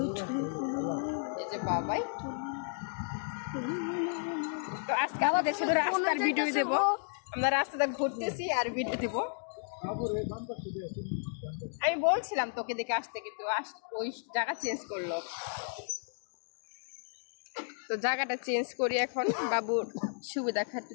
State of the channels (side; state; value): right; silent; digital silence